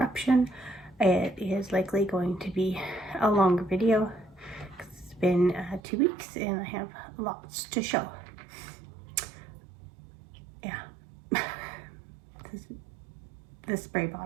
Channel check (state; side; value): drops out; left; at 5.8 s